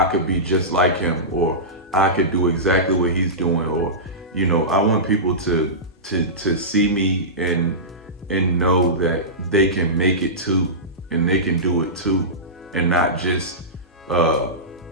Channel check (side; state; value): both; normal; correlation -0.18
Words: could be just like him, or I could do exactly what he's doing, or I want people to see me and know that they can make it too, and they can do it too, and not just oh,